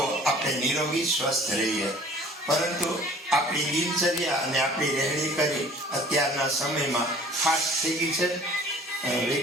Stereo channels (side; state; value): both; normal; correlation 0.50